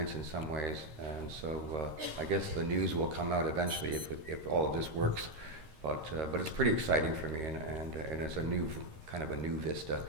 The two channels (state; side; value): late; left; 13 ms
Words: in some ways. And so I guess the news will come out eventually if all of this works. But it's pretty exciting for me, and it's a new kind of a new vista.